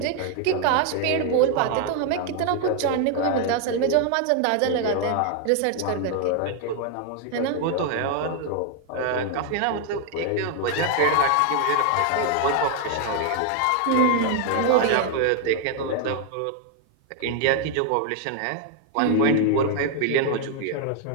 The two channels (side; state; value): both; different; correlation 0.00